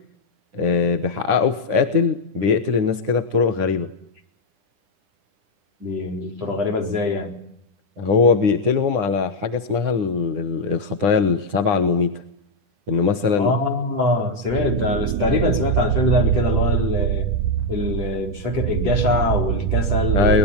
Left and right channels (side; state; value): left; late; 10 ms